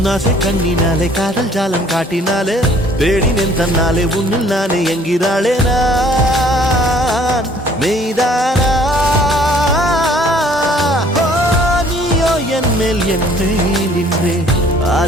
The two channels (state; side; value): normal; both; correlation 0.57